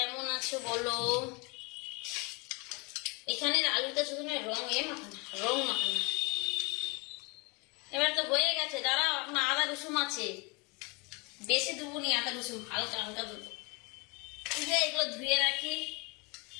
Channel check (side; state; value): right; quieter; 29.3 dB